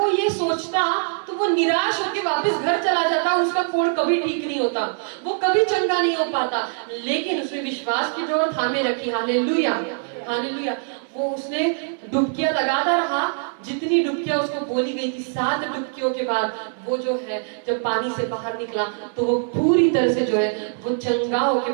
ये सोचता तो वो निराश होकर वापस घर चला जाता, उसका कोढ़ कभी ठीक नहीं होता, वो कभी चंगा नहीं हो पाता। लेकिन उसने विश्वास की डोर थामे रखी। हालेलुया। हालेलुया। वो उसने डुबकियां लगाता रहा, जितनी डुबकियां उसको बोली गई थी। 7 डुबकियों के बाद वो जो है जब पानी से बाहर निकला तो वो पूरी तरह से जो है वो चंगा होके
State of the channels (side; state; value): left; silent; 60 dB below the other